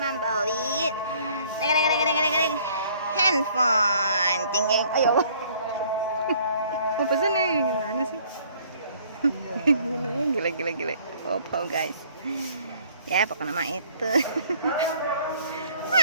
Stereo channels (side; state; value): both; inverted; correlation -0.59